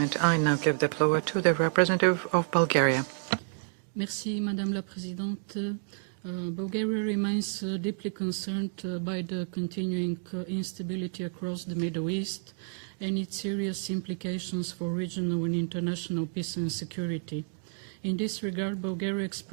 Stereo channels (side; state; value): left; silent; digital silence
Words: I now give the floor to the representative of Bulgaria. Merci, Madame la Présidente. Bulgaria remains deeply concerned by the continuing instability across the Middle East and its serious implications for regional and international peace and security. In this regard, Bulgaria